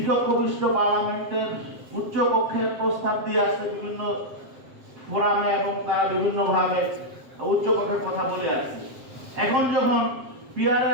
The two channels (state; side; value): late; left; 7.5 ms